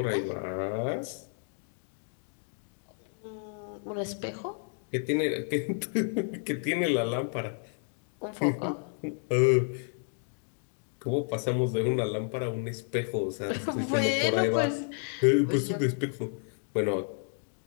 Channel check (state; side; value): silent; right; digital silence